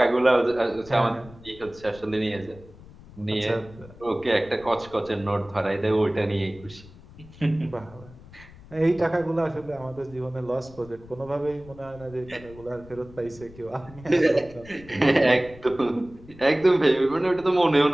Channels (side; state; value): left; noise; rumble, 20 dB below the sound